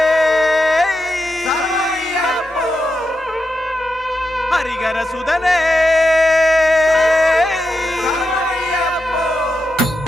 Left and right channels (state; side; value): normal; both; correlation 0.87